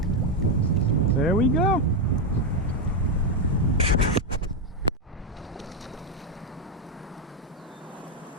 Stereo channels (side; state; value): both; normal; correlation 0.05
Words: There we go.